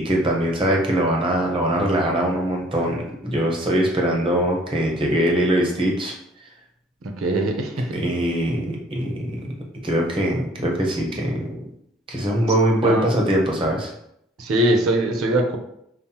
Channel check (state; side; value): normal; both; correlation 0.56